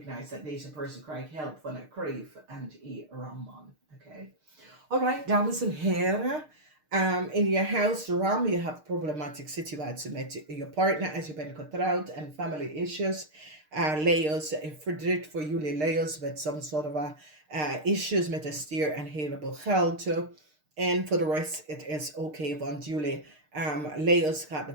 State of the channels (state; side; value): late; left; 6.6 ms